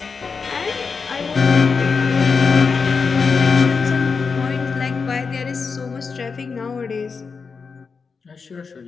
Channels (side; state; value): right; quieter; 5.1 dB